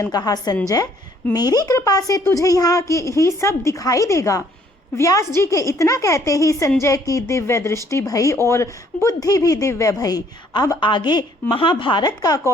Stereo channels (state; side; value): normal; both; correlation 0.63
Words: कहा, संजय, मेरी कृपा से तुझे यहाँ की ही सब दिखाई देगा। व्यास जी के इतना कहते ही संजय की दिव्य दृष्टि भई और बुद्धि भी दिव्य भई। अब आगे महाभारत का